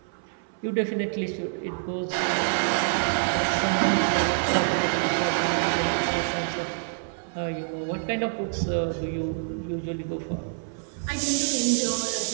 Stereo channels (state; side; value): silent; left; 60 dB below the other